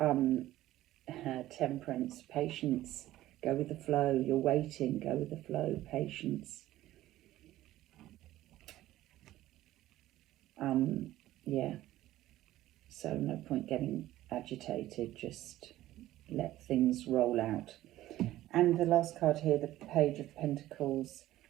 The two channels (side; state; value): left; quieter; 14.9 dB